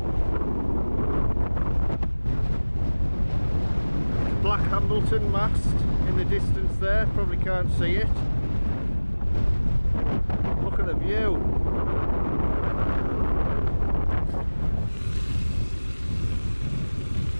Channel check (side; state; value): both; inverted; correlation -1.00